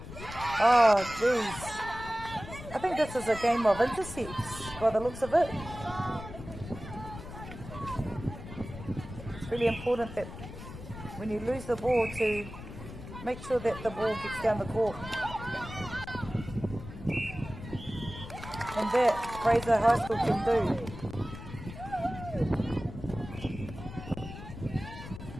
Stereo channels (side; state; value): left; noise; rumble, 12 dB below the sound